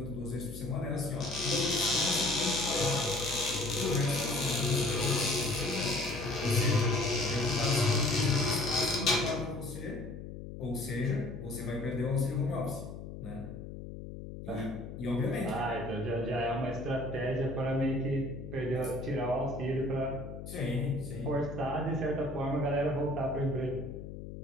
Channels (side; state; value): left; noise; hum, 10 dB below the sound